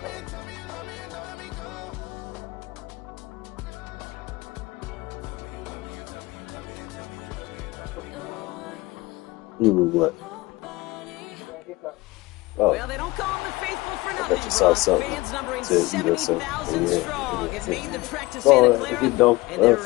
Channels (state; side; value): quieter; right; 21.2 dB